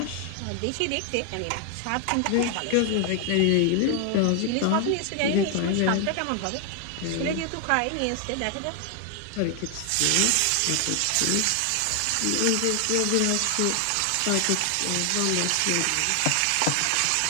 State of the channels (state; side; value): different; both; correlation 0.00